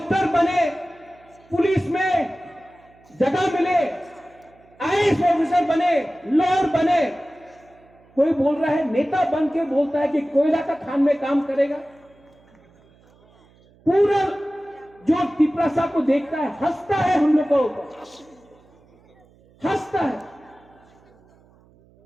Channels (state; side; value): noise; right; hum, 30 dB below the sound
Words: बने, पुलिस में जगह मिले, आईएएस ऑफिसर बने, लॉयर बने। कोई बोल रहा है, नेता बन के बोलता है कि कोयला का खान में काम करेगा। पूरा जो तिपरासा को देखता है हंसता है, हम लोग को हंसता है।